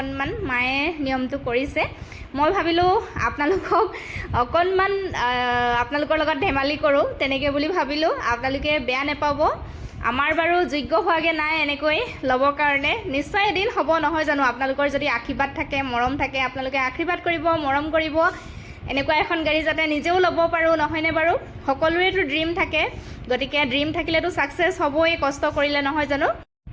মায়ে নিয়মটো কৰিছে মই ভাবিলোঁ আপোনালোকক অকণমান আপোনালোকৰ লগত ধেমালি কৰোঁ তেনেকৈ বুলি ভাবিলোঁ আপোনালোকে বেয়া নাপাব আমাৰ বাৰু যোগ্য হোৱাগৈ নাই এনেকৈ ল'বৰ কাৰণে নিশ্চয় এদিন হ'ব নহয় জানো আপোনালোকৰ যদি আশীৰ্বাদ থাকে মৰম থাকে আপোনালোকে আশীৰ্বাদ কৰিব মৰম কৰিব এনেকুৱা এখন গাড়ী যাতে নিজেও ল'ব পাৰোঁ নহয়নে বাৰু সকলোৰেতো ড্ৰিম থাকে গতিকে ড্ৰিম থাকিলেতো ছাকচেছ হ'বই কষ্ট কৰিলে নহয় জানো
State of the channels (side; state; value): both; identical; correlation 1.00